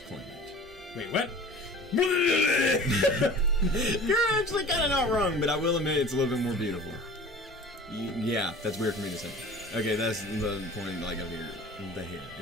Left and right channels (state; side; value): normal; both; correlation 0.42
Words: Wait, what? You're actually kind of not wrong, but I will admit it's a little bit more beautiful. Yeah, that's weird for me to say. Okay, that's the point, like, of here. The hair.